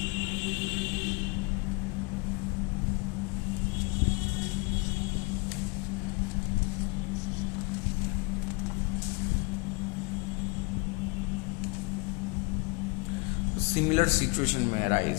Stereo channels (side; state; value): right; quieter; 28.8 dB